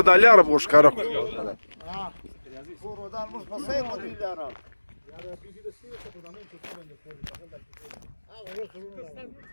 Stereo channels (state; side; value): inverted; both; correlation -1.00